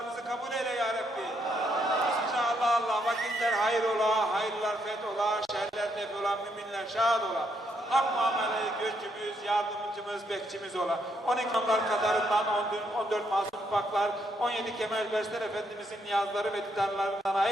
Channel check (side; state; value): both; normal; correlation 0.75